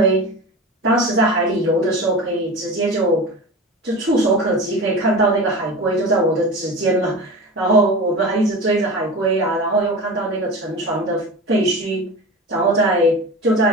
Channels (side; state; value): both; normal; correlation 0.30